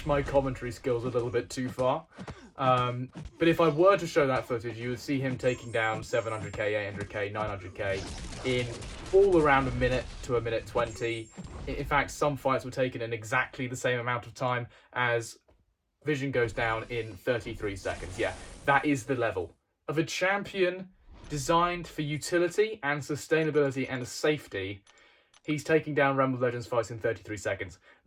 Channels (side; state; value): both; identical; correlation 1.00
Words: my commentary skills a little bit too far. But if I were to show that footage, you would see him taking down 700k, 800k, 900k in all around a minute to a minute 20. In fact, some fights were taken in exactly the same amount of time as Vision goes down in 33 seconds. Yeah, that is the level of a champion designed for utility and sustainability and safety. He's taking down Realm of Legends fights in 33 seconds.